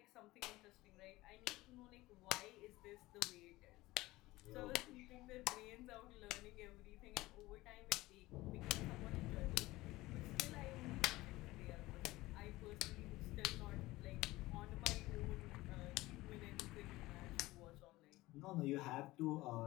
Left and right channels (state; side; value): quieter; right; 18.9 dB